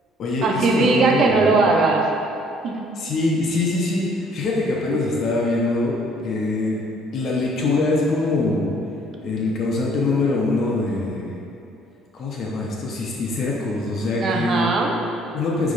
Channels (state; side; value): normal; both; correlation 0.60